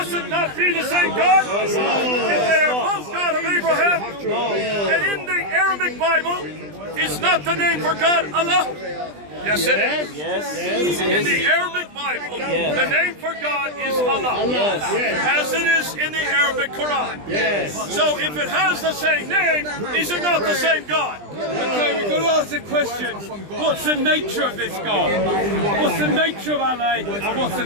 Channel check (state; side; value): late; left; 20 ms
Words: it not be the same God? If they are both God of Abraham, and in the Arabic Bible is not the name for God Allah? Yes, it is. Yes. In the Arabic Bible, the name for God is Allah, as it is in the Arabic Quran. Yes. So if it has the same name, is it not the same God? Okay, we've got to ask the question, what's the nature of this God? What's the nature of Allah, and